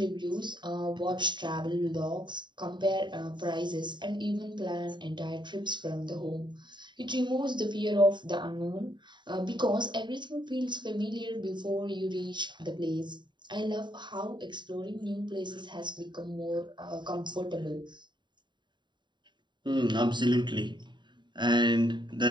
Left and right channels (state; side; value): late; left; 0.22 ms